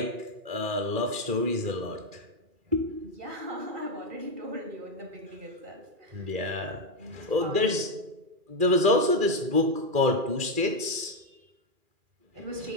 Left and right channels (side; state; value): left; late; 2.4 ms